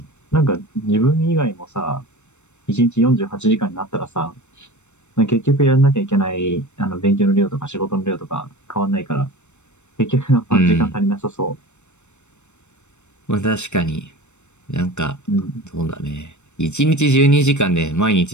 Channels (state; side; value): late; right; 0.83 ms